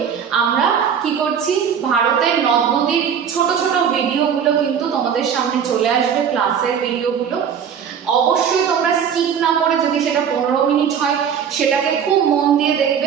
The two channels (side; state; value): left; quieter; 7.8 dB